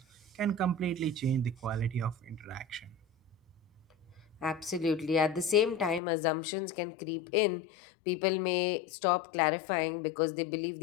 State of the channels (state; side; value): drops out; right; at 6.0 s